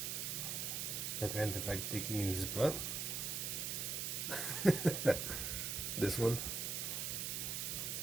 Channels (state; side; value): noise; right; hiss, 1 dB below the sound